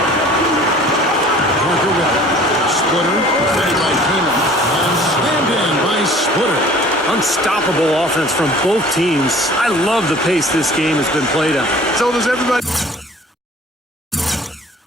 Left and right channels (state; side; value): normal; both; correlation 0.49